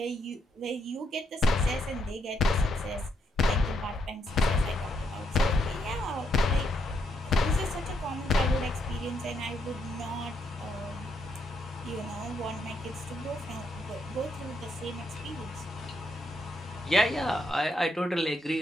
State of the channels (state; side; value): normal; both; correlation 0.76